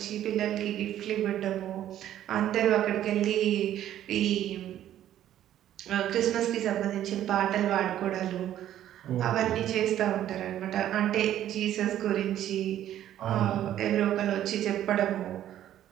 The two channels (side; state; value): left; quieter; 11.8 dB